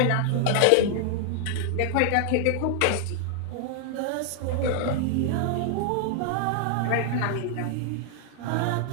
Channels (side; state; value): both; different; correlation 0.00